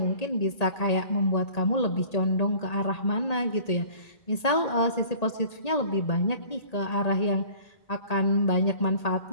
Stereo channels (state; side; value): late; right; 1.8 ms